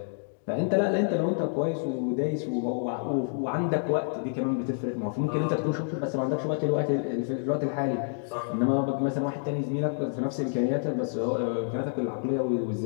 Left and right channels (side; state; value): right; silent; digital silence